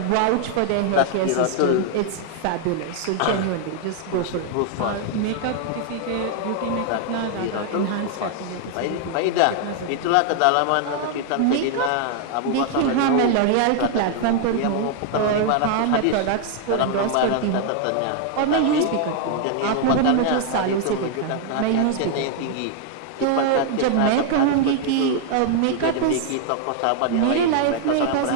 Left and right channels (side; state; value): both; different; correlation 0.00